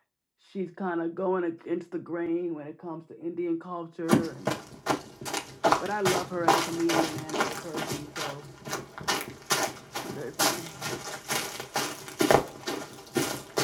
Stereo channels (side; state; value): both; identical; correlation 1.00